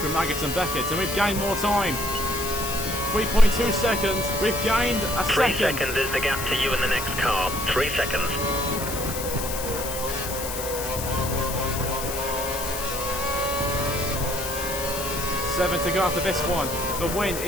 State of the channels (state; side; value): noise; left; hiss, 6 dB below the sound